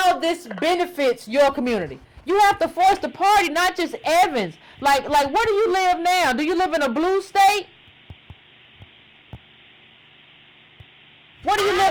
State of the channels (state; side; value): identical; both; correlation 1.00